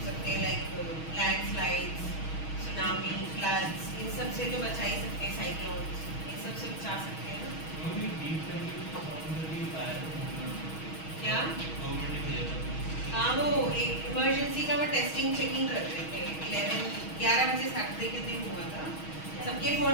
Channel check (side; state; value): right; late; 6.3 ms